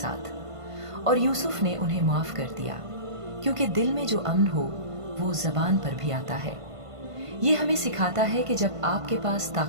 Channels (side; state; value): left; late; 1.5 ms